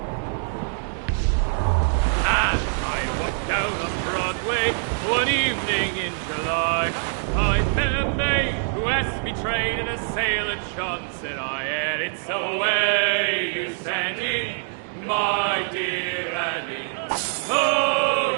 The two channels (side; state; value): left; silent; digital silence